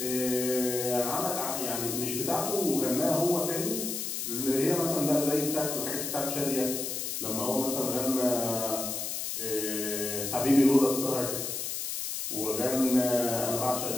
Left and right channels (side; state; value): left; noise; hiss, 3 dB below the sound